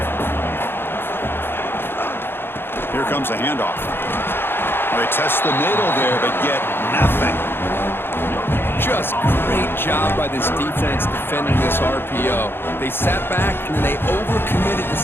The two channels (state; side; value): late; right; 0.10 ms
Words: Here comes the handoff. Well, they test the middle there, but get nothing. Just great job by this defense defending this RPO. They sat back and they overcommitted to